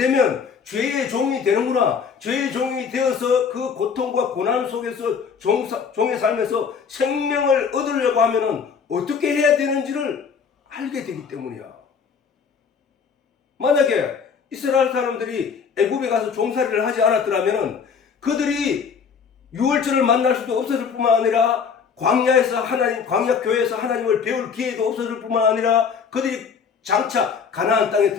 죄의 종이 되는구나. 죄의 종이 되어서 그 고통과 고난 속에서 종의 삶에서 생명을 얻으려고 하면은 어떻게 해야 되는지를 알게 되기 때문이야. 만약에 이스라엘 사람들이 애굽에 가서 종살이를 하지 않았더라면은 그들이 유월절을 만날 수도 없었을 뿐만 아니라 광야에서 광야 교회에서 하나님을 배울 기회도 없었을 뿐만 아니라 그들이 장차 가나안 땅에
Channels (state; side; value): quieter; right; 6.3 dB